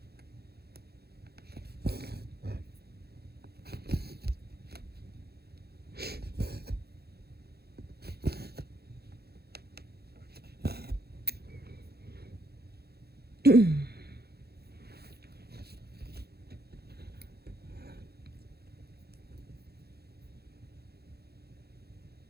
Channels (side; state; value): left; late; 0.46 ms